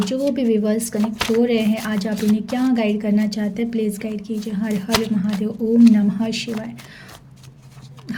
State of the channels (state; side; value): identical; both; correlation 1.00